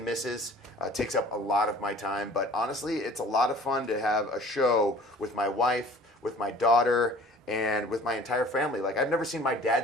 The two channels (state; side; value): normal; both; correlation 0.48